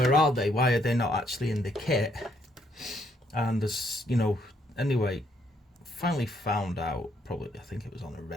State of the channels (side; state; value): both; normal; correlation 0.71